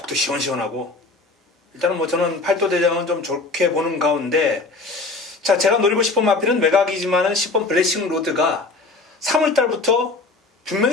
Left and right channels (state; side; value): quieter; right; 3.6 dB